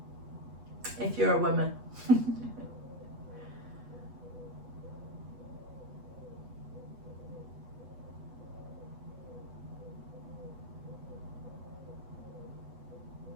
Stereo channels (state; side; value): late; left; 8.2 ms